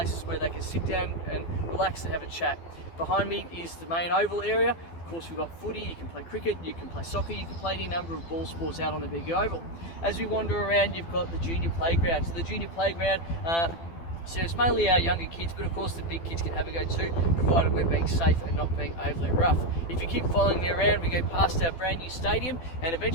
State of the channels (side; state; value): right; late; 12 ms